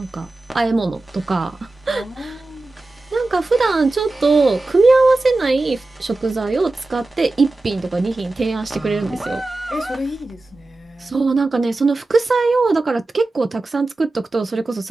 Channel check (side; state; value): left; quieter; 3.0 dB